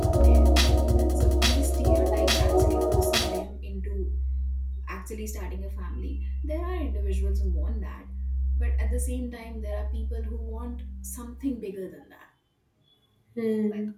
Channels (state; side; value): identical; both; correlation 1.00